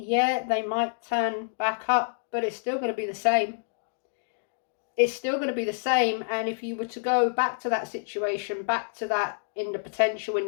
they might turn back up, but it's still going to be the same. It's still going to be the same, and if you were to go back to that situation, back to that in the potential in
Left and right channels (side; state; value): right; silent; digital silence